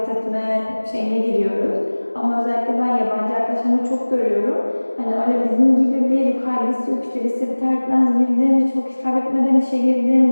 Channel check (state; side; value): inverted; both; correlation -1.00